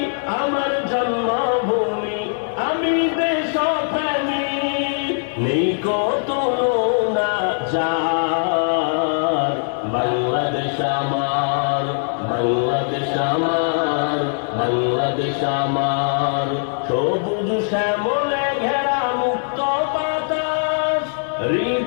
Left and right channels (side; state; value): right; silent; 65 dB below the other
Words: আমার জন্মভূমি, আমি দেশপ্রেমী, নেই কত তুলনা যার। বাংলাদেশ আমার, বাংলাদেশ আমার, বাংলাদেশ আমার, সবুজ শ্যামলে ঘেরা মুক্ত বাতাস,